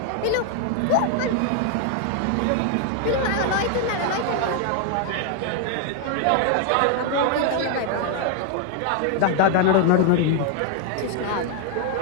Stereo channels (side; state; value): both; different; correlation 0.00